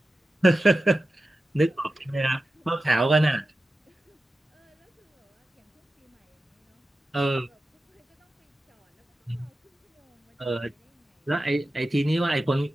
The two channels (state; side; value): normal; both; correlation 0.93